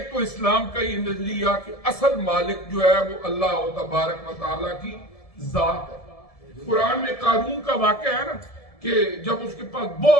تو اسلام کا یہ نظریہ کہ اصل مالک جو ہے وہ اللہ تبارک و تعالیٰ کی ذات ہے۔ قرآن میں قارون کا واقعہ ہے نا کہ جب اس کے پاس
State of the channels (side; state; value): right; late; 1.7 ms